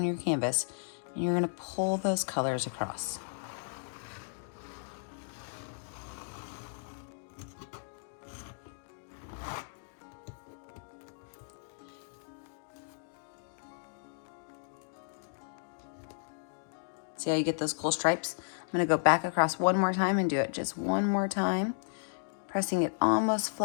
your canvas, and you're going to pull those colors across. See how you get those cool stripes? I'm going to go back across one more time and do it just one more time, pressing it almost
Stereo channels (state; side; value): silent; right; digital silence